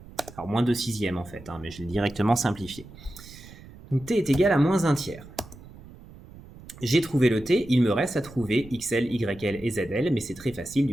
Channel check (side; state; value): right; noise; rumble, 19 dB below the sound